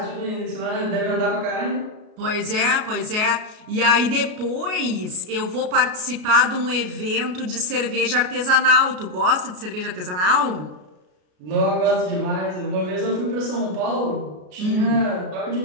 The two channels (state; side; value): late; left; 33 ms